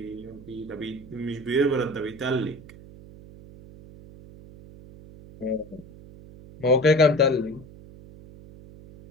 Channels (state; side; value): noise; right; hum, 19 dB below the sound